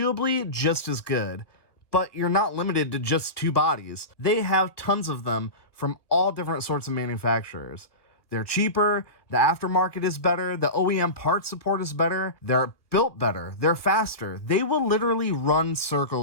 just as good, but you're not limited to just 2 bodies. They have tons of them from all different sorts of manufacturers. They're cheaper, the aftermarket is better, the OEM part support is better, they're built better, they're faster. They will literally run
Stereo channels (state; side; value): late; right; 1.2 ms